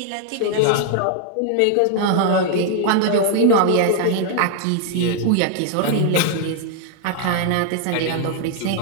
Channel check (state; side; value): different; both; correlation 0.00